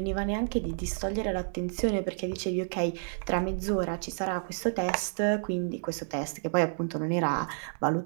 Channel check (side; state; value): left; silent; digital silence